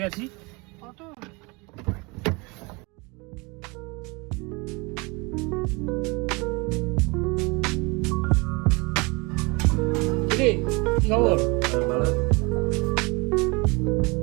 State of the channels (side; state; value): left; quieter; 27.3 dB